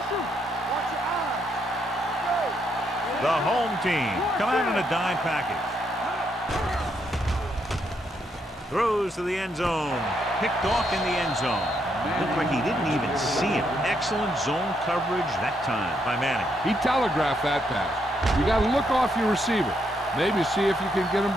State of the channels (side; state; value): both; normal; correlation 0.77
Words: your eyes. The home team come out in a dime package. Throws to the end zone. Picked off in the end zone. Looked like he didn't even see him. Excellent zone coverage that time by Manning. He telegraphed that pass. You got to look off your receiver. Maybe see if you can get him